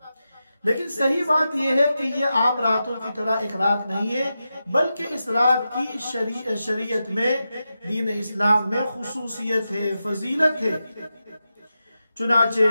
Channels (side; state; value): both; inverted; correlation -0.90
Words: لیکن صحیح بات یہ ہے کہ یہ عام راتوں کی طرح ایک رات نہیں ہے، بلکہ اس رات کی شریعت میں، دین اسلام میں خصوصیت ہے، فضیلت ہے۔ چنانچہ